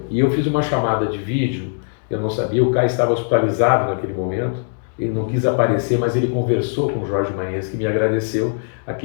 E eu fiz uma chamada de vídeo, eu não sabia, o K estava hospitalizado naquele momento, ele não quis aparecer, mas ele conversou com o Jorge Maenski e me agradeceu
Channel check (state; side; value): silent; right; digital silence